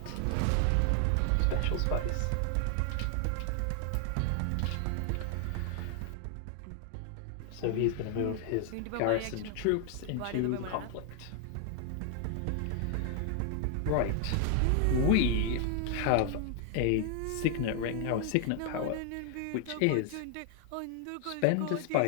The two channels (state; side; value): different; both; correlation 0.00